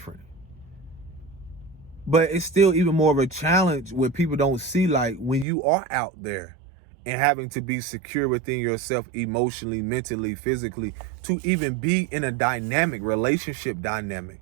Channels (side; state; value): left; drops out; at 5.5 s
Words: But it's still even more of a challenge when people don't see, like, when you are out there and having to be secure within yourself emotionally, mentally, physically, to even be in a dynamic relationship dynamic.